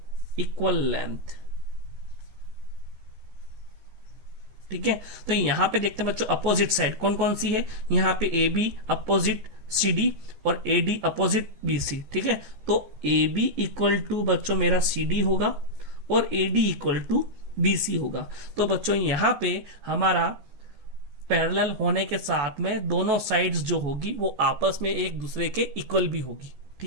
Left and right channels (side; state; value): left; late; 14 ms